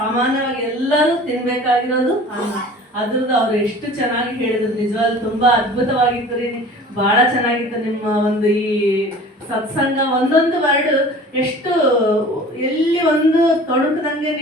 ಎಲ್ಲರೂ ತಿನ್ಬೇಕಾಗಿರೋದು ಅನ್ನ. ಅದ್ರದ್ದು ಅವ್ರು ಎಷ್ಟು ಚೆನ್ನಾಗಿ ಹೇಳಿದ್ರು. ನಿಜವಾಗ್ಲೂ ತುಂಬಾ ಅದ್ಭುತವಾಗಿತ್ತು ರೀ. ಬಹಳ ಚೆನ್ನಾಗಿತ್ತು ನಿಮ್ಮ ಒಂದು ಈ ಸತ್ಸಂಗ. ಒಂದೊಂದು ವರ್ಡ್ ಎಷ್ಟು ಎಲ್ಲಿ ಒಂದು ತೊಡಕದಂಗೆ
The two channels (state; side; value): normal; both; correlation 0.44